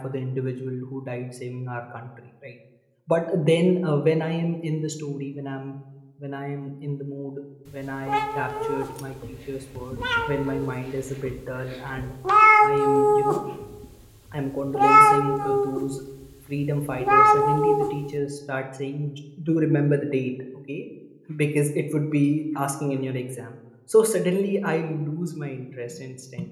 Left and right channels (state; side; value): identical; both; correlation 1.00